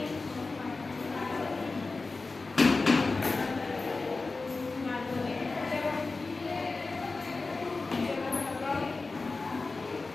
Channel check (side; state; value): right; quieter; 3.7 dB